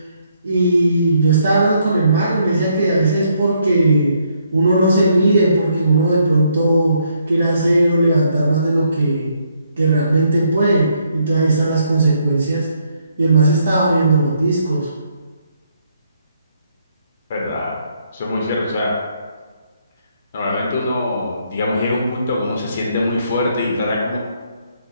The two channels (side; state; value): both; inverted; correlation -0.72